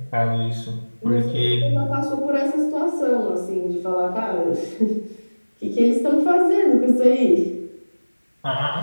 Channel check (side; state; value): both; inverted; correlation -1.00